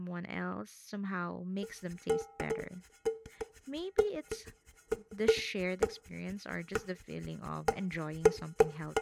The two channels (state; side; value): identical; both; correlation 1.00